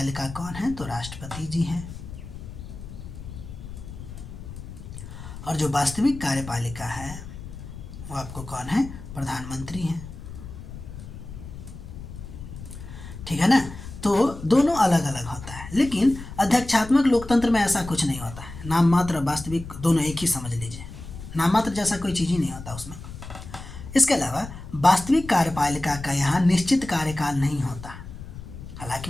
कौन है, तो राष्ट्रपति जी हैं, और जो वास्तविक कार्यपालिका है वो आपको कौन है, प्रधानमंत्री हैं, ठीक है ना। तो दोनों अलग अलग होता है। लेकिन अध्यक्षात्मक लोकतंत्र में ऐसा कुछ नहीं होता है, नाम मात्र और वास्तविक दोनों एक ही समझ लीजिए, नाम मात्र जैसा कोई चीज़ ही नहीं होता उसमें। इसके अलावा वास्तविक कार्यपालिका का यहाँ निश्चित कार्यकाल नहीं होता, हालांकि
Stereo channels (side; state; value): left; noise; rumble, 12 dB below the sound